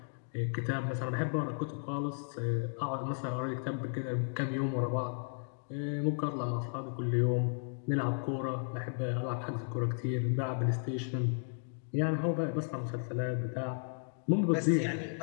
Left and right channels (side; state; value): right; silent; digital silence